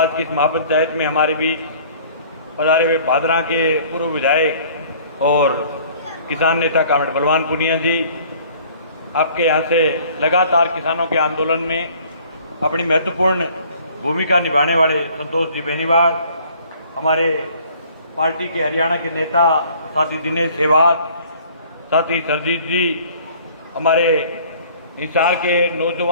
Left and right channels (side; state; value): both; inverted; correlation -0.53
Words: की इस महापंचायत में हमारे बीच पधारे हुए भादरा के पूर्व विधायक और किसान नेता कामरेड बलवान पुनिया जी, आपके यहाँ से लगातार किसानों के आंदोलन में अपनी महत्वपूर्ण भूमिका निभाने वाले संतोष जी बेनीवाल, हमारे पार्टी के हरियाणा के नेता साथी दिनेश सेवाग, साथी सरजीत जी, हमारे हिसार के